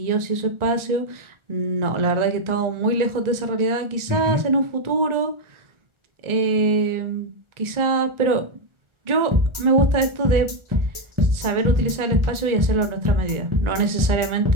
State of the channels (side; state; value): left; late; 1.4 ms